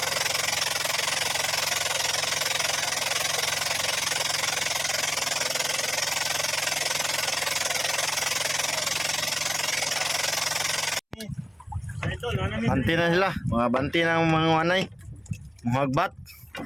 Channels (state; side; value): identical; both; correlation 1.00